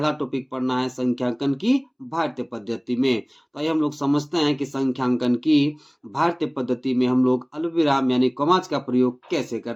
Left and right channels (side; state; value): both; identical; correlation 1.00